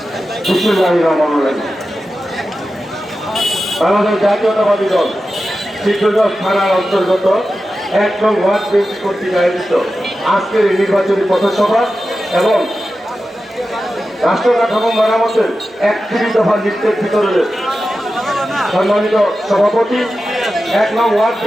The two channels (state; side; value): normal; both; correlation 0.92